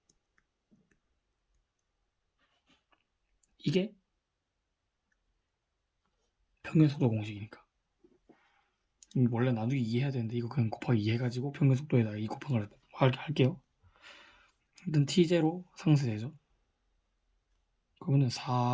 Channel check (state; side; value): identical; both; correlation 1.00